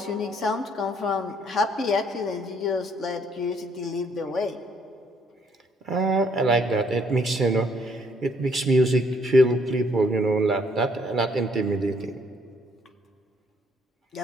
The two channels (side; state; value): both; normal; correlation 0.66